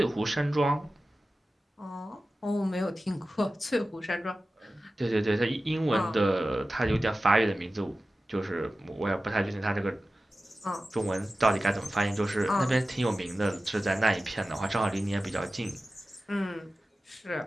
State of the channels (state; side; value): normal; both; correlation 0.95